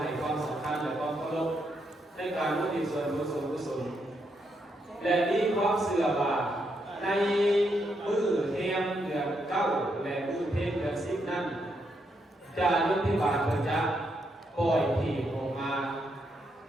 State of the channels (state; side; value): normal; both; correlation 0.79